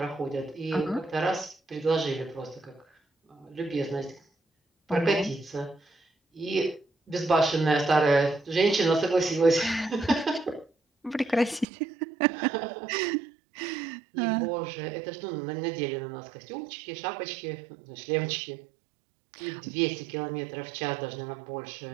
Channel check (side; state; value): left; drops out; at 11.7 s